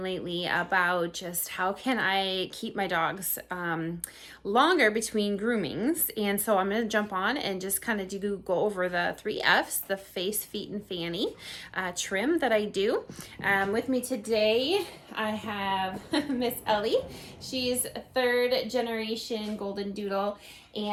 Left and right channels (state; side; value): identical; both; correlation 1.00